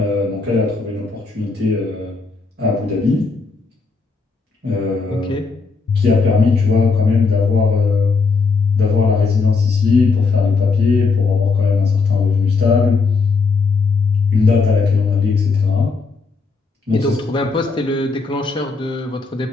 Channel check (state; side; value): quieter; right; 4.5 dB